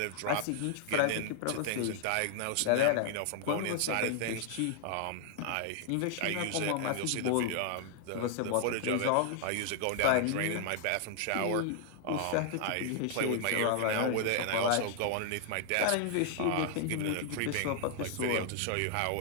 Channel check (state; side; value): different; both; correlation 0.00